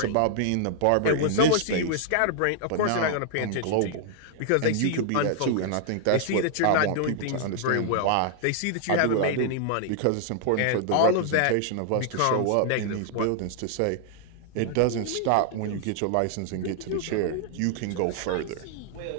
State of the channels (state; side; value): different; both; correlation 0.00